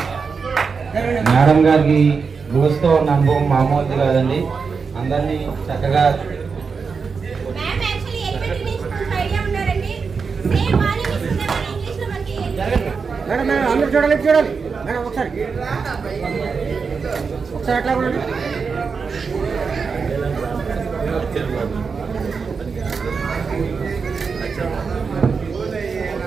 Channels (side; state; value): left; quieter; 5.3 dB